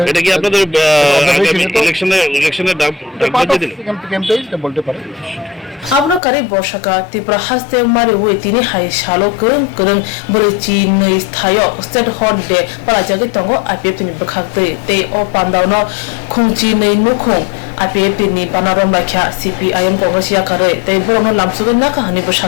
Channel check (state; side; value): drops out; right; at 6.2 s